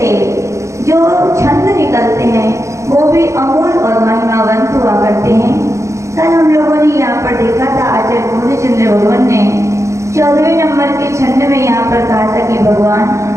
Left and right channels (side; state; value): left; late; 0.14 ms